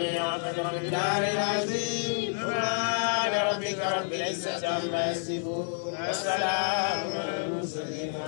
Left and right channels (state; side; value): silent; right; 57 dB below the other